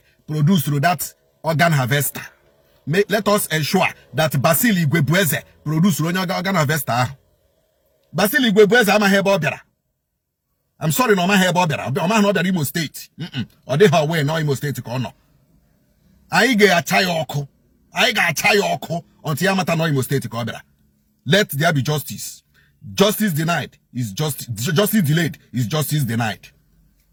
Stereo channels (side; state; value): both; identical; correlation 1.00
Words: produced through that organ harvester. Let us ensure that basilica produced through organ harvester. Basilica ama hebo biara. I'm sorry, no, my hair bobber. I'm not the Imo State. Or they have way no Imo State corner. I get a chayoko. Until Yamata no Imo State corner. Let there be justice. Justice denied is justice delayed is justice denied.